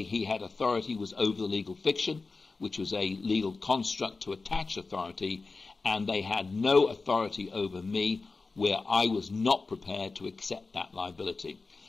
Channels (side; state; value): right; quieter; 3.9 dB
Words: he had authority was over the legal fiction, which was a legal construct to attach authority, and they had no authority over me where I was not prepared to accept that liability.